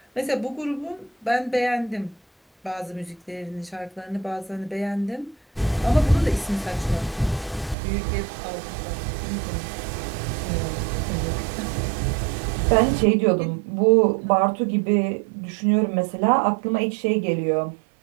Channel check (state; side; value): drops out; left; at 7.8 s